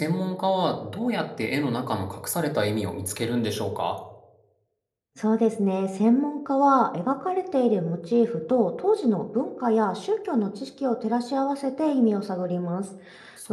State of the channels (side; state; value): both; identical; correlation 1.00